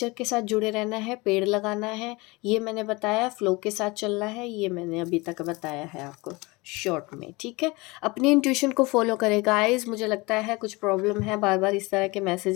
के साथ जुड़े रहना है, पेड़ लगाना है, ये मैंने बताया, फ्लो के साथ चलना है, ये मैंने अभी तक बताया है आपको शॉर्ट में, ठीक है। अपनी इंट्यूशन को फॉलो करें गाइस। मुझे लगता है कुछ प्रॉब्लम है, बार बार इस तरह के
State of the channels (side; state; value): right; quieter; 24.2 dB